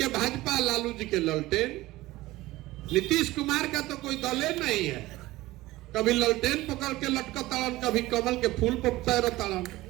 भाजपा, लालू जी के ललटेन। नीतीश कुमार का तो कोई दल नहीं है। कभी ललटेन पकड़ के लटका ताड़न, कभी कमल के फूल पर तैर ताड़न।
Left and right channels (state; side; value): quieter; left; 18.1 dB